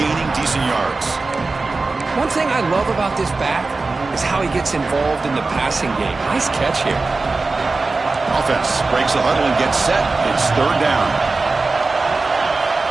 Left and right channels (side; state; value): left; quieter; 3.7 dB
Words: decent yards. One thing I love about this back is how he gets involved in the passing game. Nice catch here. Offense breaks the huddle and gets set. It's third down.